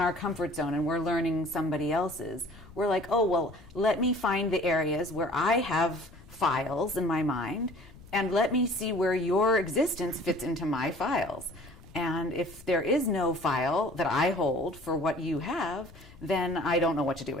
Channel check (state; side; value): noise; left; rumble, 21 dB below the sound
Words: comfort zone and we're learning somebody else's. We're like, oh, well, let me find the areas where I have files in my mind and let me see where your existence fits into my files. And if there is no file that I hold for what you have, then I don't know what to do